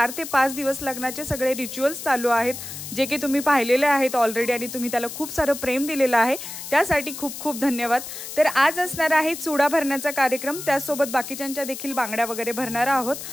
ते 5 दिवस लग्नाचे सगळे रिच्युअल्स चालू आहेत, जे की तुम्ही पाहिलेले आहेत ऑलरेडी आणि तुम्ही त्याला खूप सारं प्रेम दिलेलं आहे, त्यासाठी खूप खूप धन्यवाद। तर आज असणार आहे चुडा भरण्याचा कार्यक्रम, त्यासोबत बाकीच्यांच्या देखील बांगड्या वगैरे भरणार आहोत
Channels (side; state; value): left; noise; hiss, 9 dB below the sound